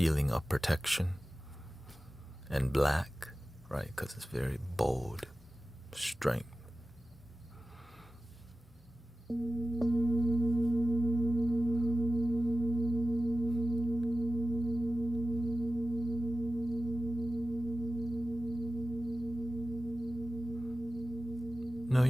of protection. And black, right, because it's very bold, strength. No,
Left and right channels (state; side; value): normal; both; correlation 0.95